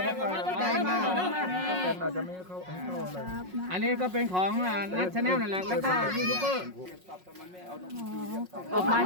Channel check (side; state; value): left; late; 5.5 ms